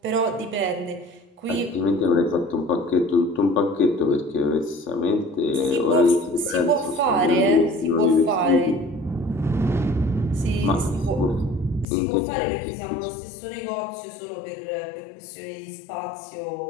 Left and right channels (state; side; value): drops out; right; at 11.9 s